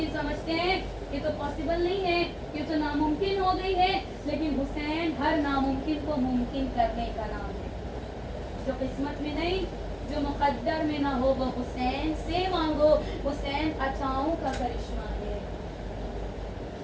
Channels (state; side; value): identical; both; correlation 1.00